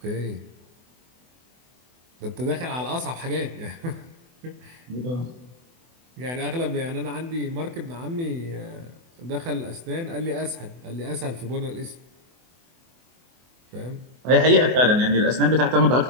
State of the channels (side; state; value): left; late; 24 ms